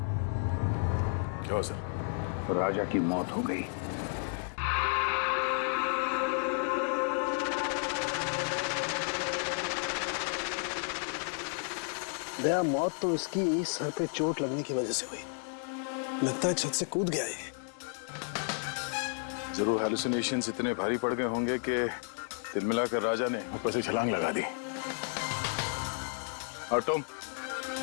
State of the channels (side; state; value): right; silent; 56 dB below the other